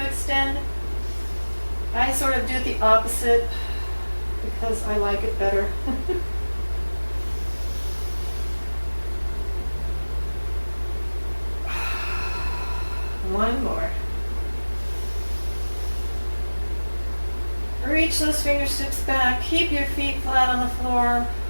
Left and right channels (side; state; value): both; inverted; correlation -1.00